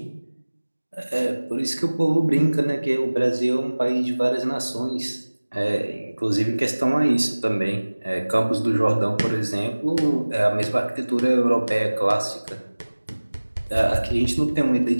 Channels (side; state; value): both; inverted; correlation -1.00